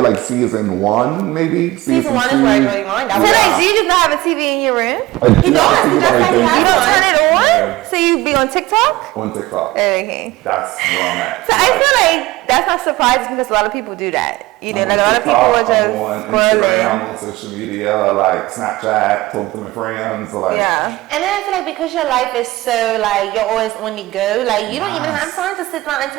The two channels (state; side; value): quieter; left; 18.5 dB